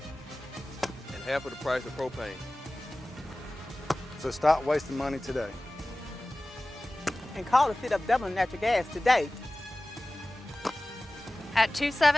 And half of the price of propane. So stop wasting money today. And call the City of Dublin Natural Gas today. At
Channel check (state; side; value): normal; both; correlation 0.97